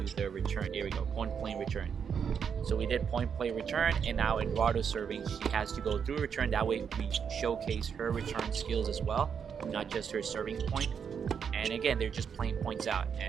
the return. Here we go, point play return. So we did point play return, and now Eduardo serving, she has to go through return. That way we showcase her return skills as well, not just her serving point. And again, they're just playing points out,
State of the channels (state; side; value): quieter; left; 7.1 dB